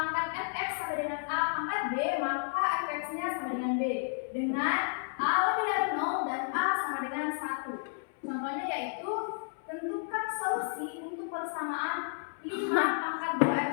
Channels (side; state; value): right; silent; 56 dB below the other